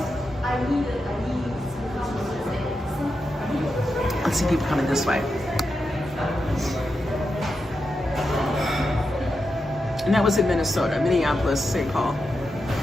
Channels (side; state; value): both; normal; correlation 0.87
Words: Let's see people coming this way. And that was in Minnesota, Minneapolis, St. Paul.